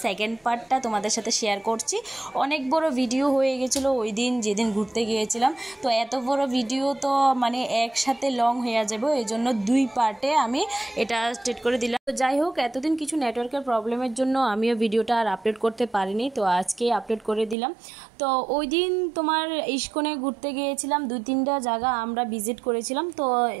সেকেন্ড পার্টটা তোমাদের সাথে শেয়ার করছি। অনেক বড় ভিডিও হয়ে গেছিলো ওই দিন যেদিন ঘুরতে গিয়েছিলাম। তো এত বড় ভিডিও তো মানে একসাথে লং হয়ে যাবে, এই জন্য দুই পার্টে আমি এটা স্টেট করে দিলাম। তো যাই হোক, এতদিন কিছু নেটওয়ার্কের প্রবলেমের জন্য আমিও ভিডিওটা আর আপলোড করতে পারিনি, তো আজকে আপলোড করে দিলাম। তো ওই দিন তোমার ইস্কনে ঘুরতে গিয়েছিলাম, 2-3টা জায়গা আমরা ভিজিট করেছিলাম। তো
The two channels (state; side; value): drops out; left; at 17.6 s